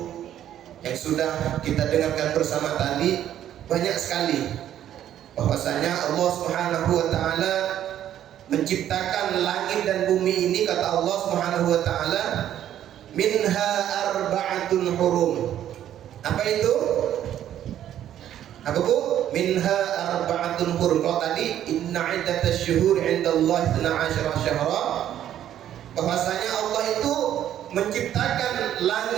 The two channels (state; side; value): quieter; left; 11.1 dB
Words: yang sudah kita dengarkan bersama tadi. Banyak sekali bahwasanya Allah Subhanahu wa ta'ala menciptakan langit dan bumi ini, kata Allah Subhanahu wa ta'ala, minha arba'atun hurum. Apa itu? Apa Bu? Minha arba'atun hurum. Kalau tadi inna iddatasy syuhur 'indallahi 12 syahra, bahwasanya Allah itu menciptakan